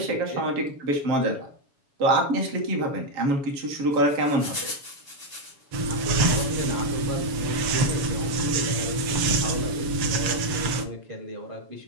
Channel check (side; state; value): left; late; 7.1 ms